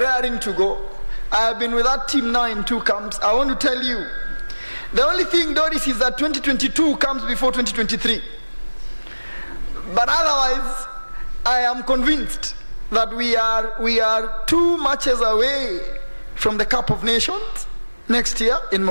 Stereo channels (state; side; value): inverted; both; correlation -1.00